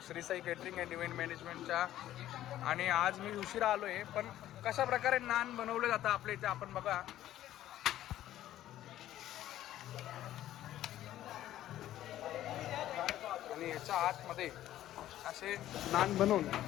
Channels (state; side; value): quieter; right; 13.1 dB